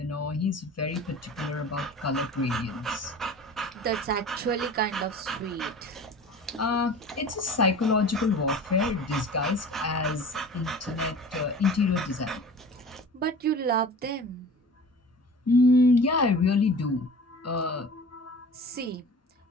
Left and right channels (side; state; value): both; normal; correlation 0.40